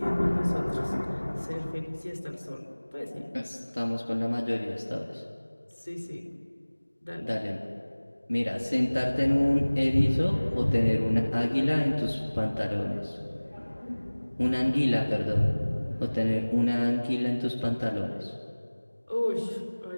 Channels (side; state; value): both; inverted; correlation -1.00